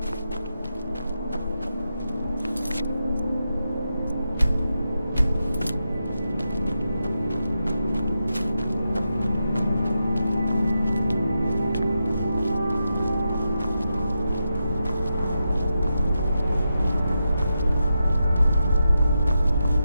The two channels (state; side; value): inverted; both; correlation -0.87